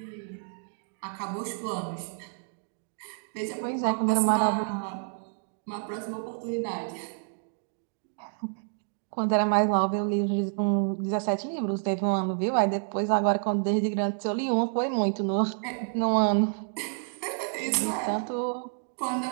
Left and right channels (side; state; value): left; silent; 59 dB below the other